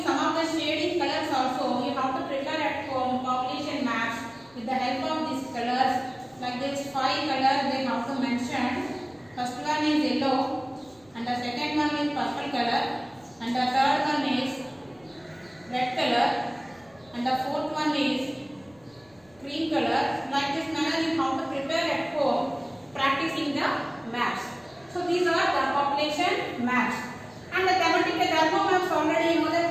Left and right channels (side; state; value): left; noise; rumble, 30 dB below the sound